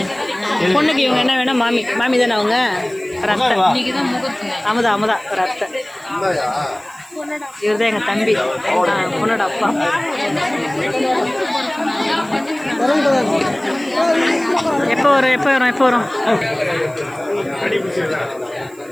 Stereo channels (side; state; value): right; noise; hiss, 26 dB below the sound